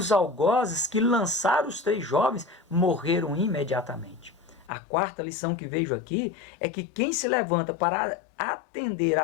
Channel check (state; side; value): drops out; right; at 4.7 s